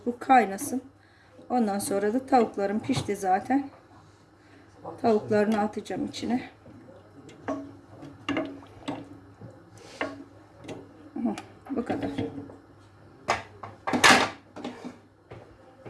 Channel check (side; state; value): both; identical; correlation 1.00